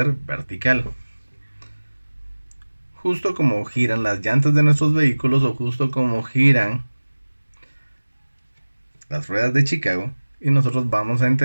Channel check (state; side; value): inverted; both; correlation -1.00